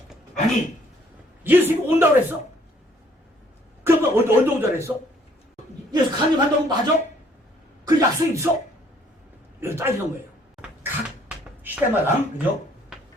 아니 예수님이 온다고 그랬어? 그러면 언제 온다고 그랬어? 예수 강림한다고 맞아? 그 약속이 있어? 이거 따지는 거예요. 각 시대마다, 그죠?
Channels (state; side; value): normal; both; correlation 0.62